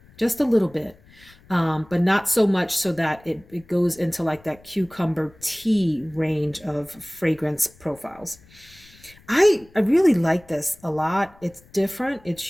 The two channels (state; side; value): noise; left; rumble, 27 dB below the sound